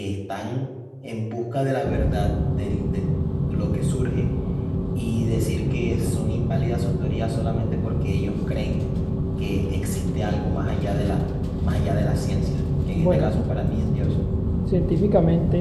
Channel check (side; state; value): both; identical; correlation 1.00